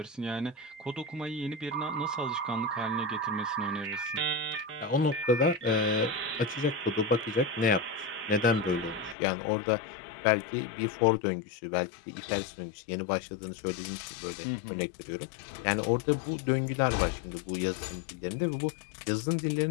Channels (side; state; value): right; drops out; at 9.2 s